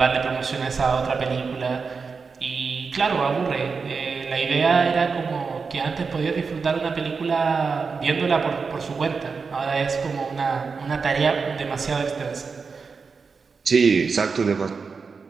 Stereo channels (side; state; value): left; quieter; 5.0 dB